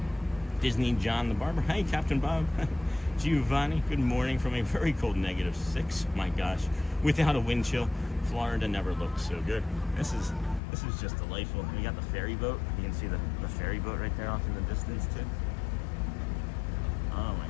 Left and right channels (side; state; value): right; drops out; at 10.6 s